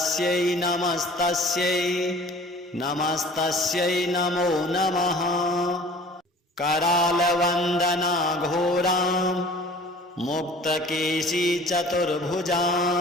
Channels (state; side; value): normal; both; correlation 0.47